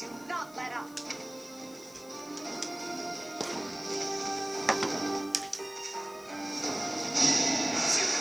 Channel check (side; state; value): left; noise; hiss, 23 dB below the sound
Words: not let up.